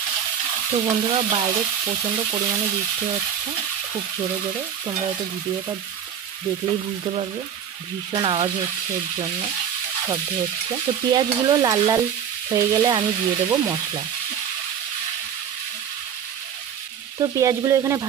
তো বন্ধুরা, বাইরে প্রচণ্ড পরিমাণে বৃষ্টি হচ্ছে, খুব জোরে জোরে। তোমরা হয়তো ভিডিওটা দেখলেই বুঝতে পারবে, ভীষণ আওয়াজ হচ্ছে, এর জন্য শব্দ হচ্ছে। তো পেঁয়াজগুলো লাল লাল হয়ে গেলে আমি দিয়ে দেবো মশলা। তো পেঁয়াজগুলো এখানে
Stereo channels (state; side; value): quieter; left; 8.6 dB